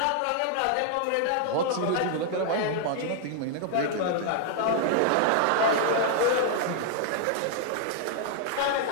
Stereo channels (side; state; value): both; different; correlation 0.00